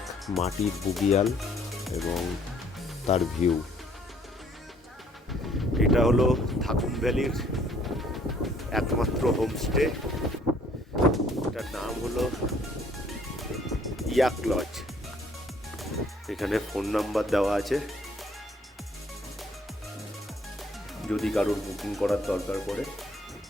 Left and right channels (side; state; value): both; normal; correlation 0.61